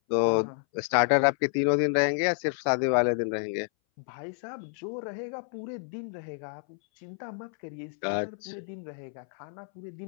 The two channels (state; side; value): silent; right; 58 dB below the other